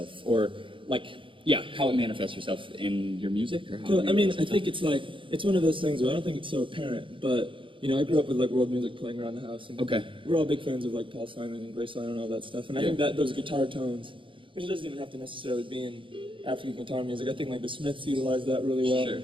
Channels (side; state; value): left; late; 0.25 ms